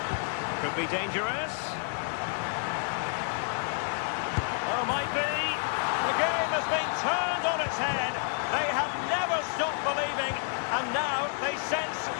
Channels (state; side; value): silent; right; 58 dB below the other